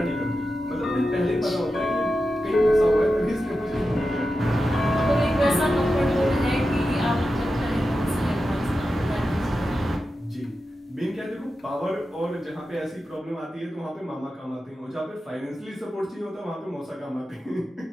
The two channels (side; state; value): both; normal; correlation 0.91